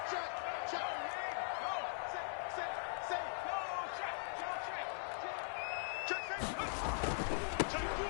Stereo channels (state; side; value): silent; right; digital silence